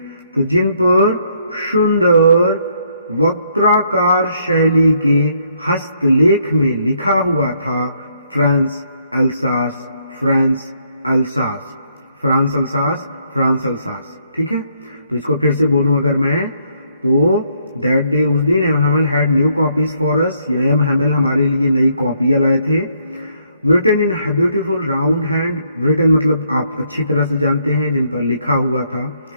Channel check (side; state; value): both; inverted; correlation -0.71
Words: तो जिन पर सुंदर वक्राकार शैली के हस्तलेख में लिखा हुआ था France Alsace, France Alsace, France Alsace, France Alsace. ठीक है। तो इसको फिर से बोलूं अगर मैं, तो दैट डे, उस दिन, M Hamel had new copies for us, M Hamel हमारे लिए नई कॉपियां लाए थे। written in a beautiful round hand, written मतलब आप अच्छी तरह से जानते हैं, जिन पर लिखा हुआ था।